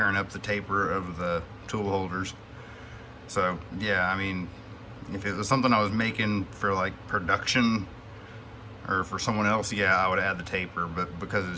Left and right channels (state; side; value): identical; both; correlation 1.00